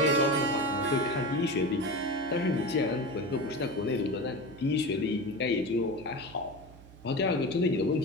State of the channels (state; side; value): noise; right; hum, 20 dB below the sound